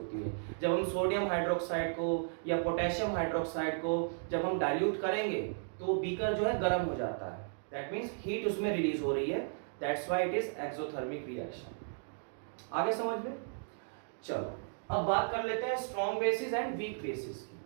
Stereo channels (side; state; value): left; silent; digital silence